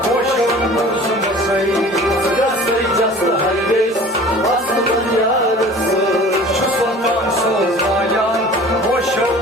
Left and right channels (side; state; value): both; normal; correlation 0.44